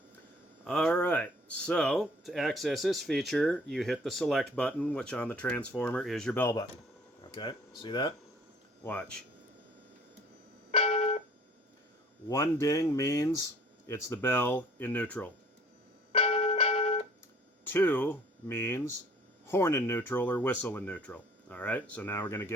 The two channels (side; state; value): both; normal; correlation 0.54